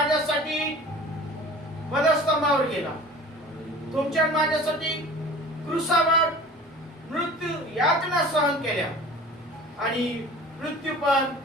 वधस्तंभावर गेला, तुमच्या आणि माझ्यासाठी क्रूसावर मृत्यू यातना सहन केल्या आणि मृत्यू पण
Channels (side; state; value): both; normal; correlation 0.42